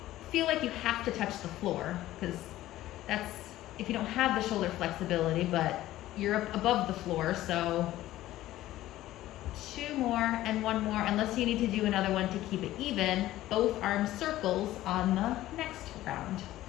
feel like you have to touch the floor, because that's if you don't have the shoulder flexibility, but you're up above the floor. So 2 more and 1 more, unless you need to do another one to keep it even. Both arms circles on the next round.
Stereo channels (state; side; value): quieter; right; 15.0 dB